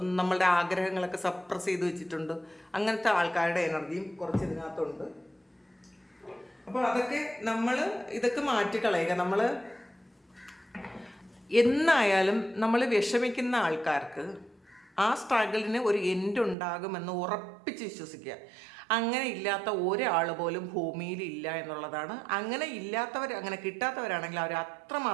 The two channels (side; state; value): left; drops out; at 16.6 s